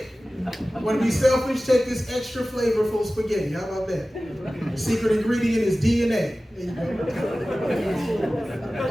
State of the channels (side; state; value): both; normal; correlation 0.96